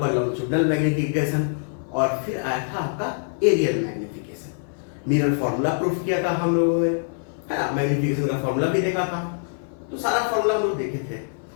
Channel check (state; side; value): silent; right; digital silence